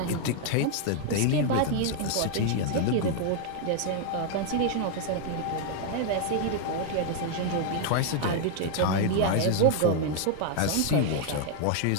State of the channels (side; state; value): both; different; correlation 0.00